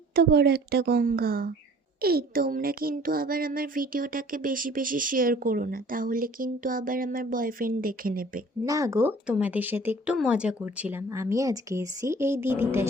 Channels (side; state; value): both; normal; correlation 0.50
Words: বড় একটা গঙ্গা। এই তোমরা কিন্তু আবার আমার ভিডিওটাকে বেশি বেশি শেয়ার করো না, তাহলে কিন্তু আবার আমার বয়ফ্রেন্ড দেখে নেবে। না গো, তোমাদের সাথে একটু মজা করছিলাম। আমি আজকে এসেছি এই দিদিটার